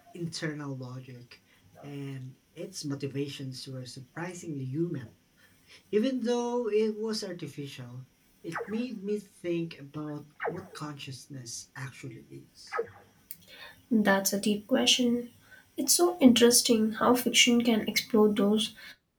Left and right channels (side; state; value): both; identical; correlation 1.00